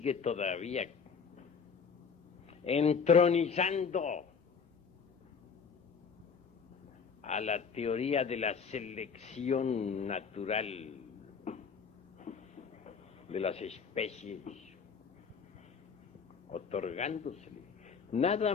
todavía entronizando a la teoría de la selección natural de las especies, otorgándosele nada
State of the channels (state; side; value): quieter; right; 6.0 dB